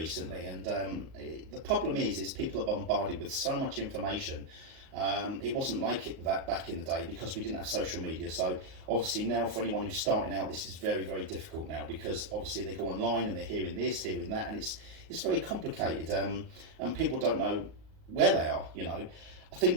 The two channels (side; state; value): left; late; 38 ms